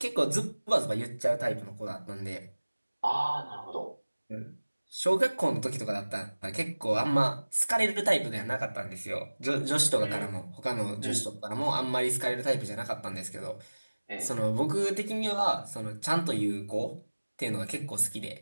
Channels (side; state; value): both; inverted; correlation -1.00